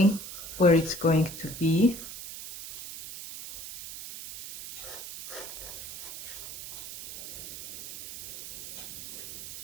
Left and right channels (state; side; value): noise; right; hiss, 10 dB below the sound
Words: where it's going to be.